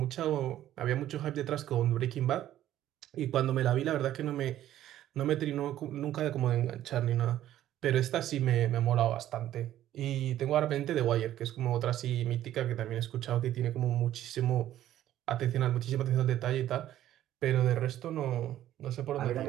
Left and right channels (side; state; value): left; quieter; 12.7 dB